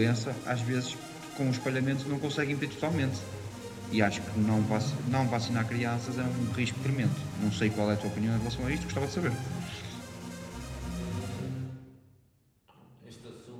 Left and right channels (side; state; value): both; identical; correlation 1.00